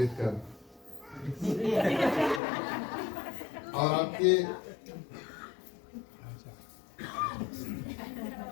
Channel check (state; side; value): drops out; right; at 2.4 s